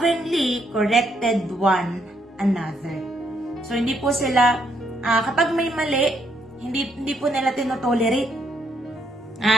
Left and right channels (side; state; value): both; normal; correlation 0.73